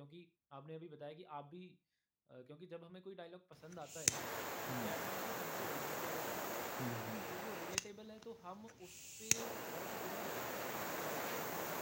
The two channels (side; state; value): both; identical; correlation 1.00